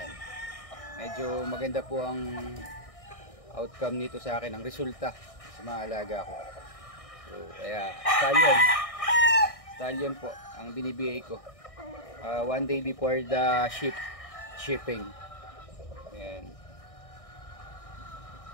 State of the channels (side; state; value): right; late; 1.6 ms